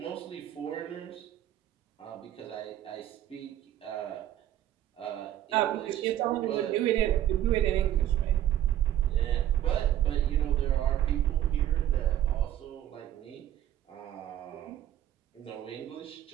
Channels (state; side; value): quieter; left; 12.0 dB